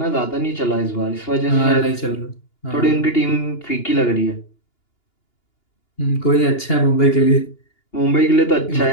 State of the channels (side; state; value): right; late; 2.8 ms